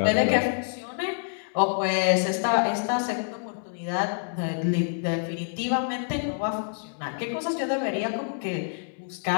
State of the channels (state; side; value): silent; right; digital silence